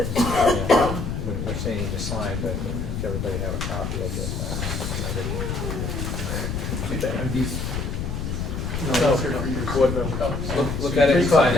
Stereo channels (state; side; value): noise; left; rumble, 3 dB below the sound